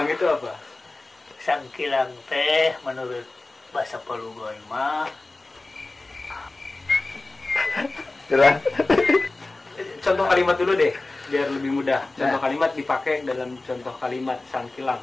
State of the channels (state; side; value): quieter; right; 3.1 dB